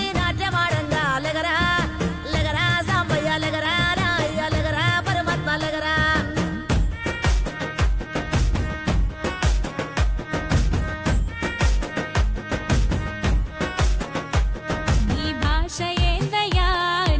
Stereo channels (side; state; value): both; identical; correlation 1.00